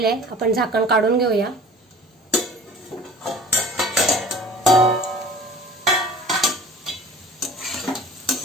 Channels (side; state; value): both; normal; correlation 0.44